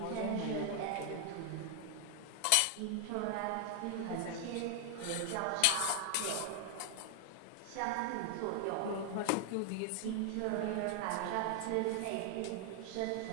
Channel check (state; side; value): different; both; correlation 0.00